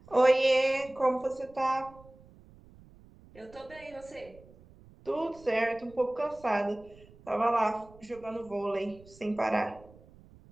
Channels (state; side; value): noise; right; rumble, 24 dB below the sound